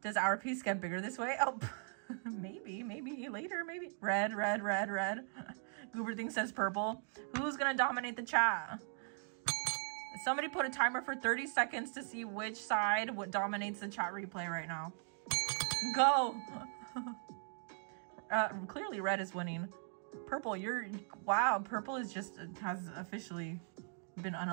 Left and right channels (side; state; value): left; silent; 52 dB below the other